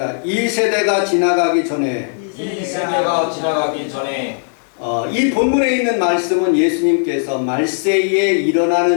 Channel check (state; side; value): silent; right; digital silence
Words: 이 세대가 지나가기 전에. 이 세대가 지나가기 전에. 이 본문에 있는 말씀은 예수님께서 말세에